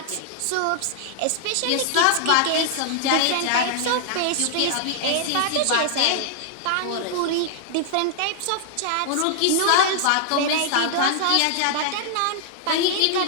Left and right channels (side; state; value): both; different; correlation -0.01